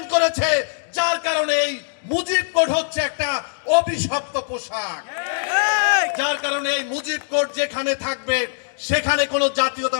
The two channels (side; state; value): right; silent; digital silence